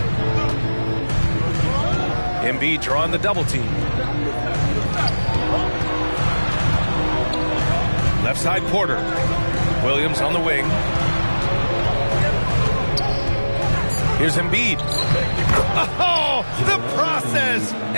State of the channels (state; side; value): inverted; both; correlation -1.00